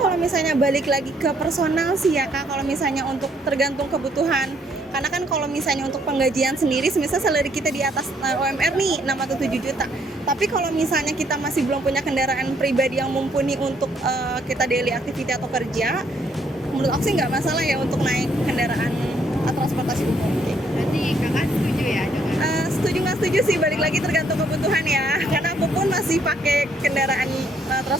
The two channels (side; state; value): both; normal; correlation 0.68